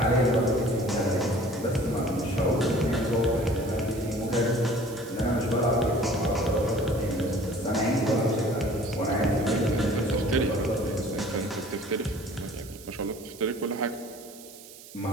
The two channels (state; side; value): noise; right; hiss, 18 dB below the sound